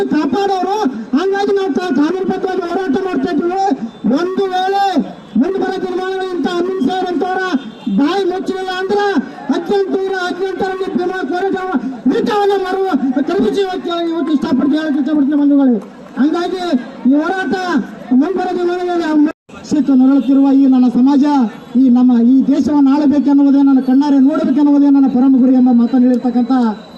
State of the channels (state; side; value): identical; both; correlation 1.00